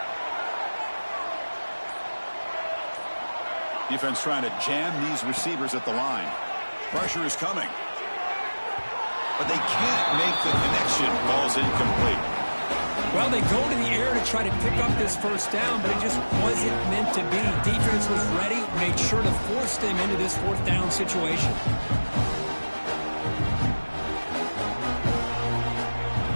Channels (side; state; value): both; inverted; correlation -1.00